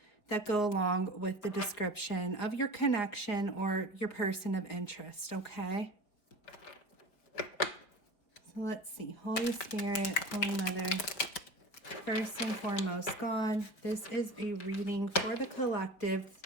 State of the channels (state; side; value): late; right; 5.1 ms